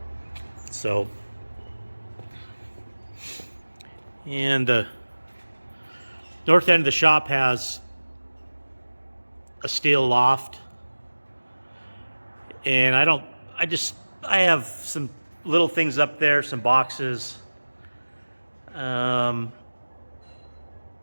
So, and the north end of the shop has a steel loft, and I have some little things up there, some boxes. I'm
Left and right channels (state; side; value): inverted; both; correlation -1.00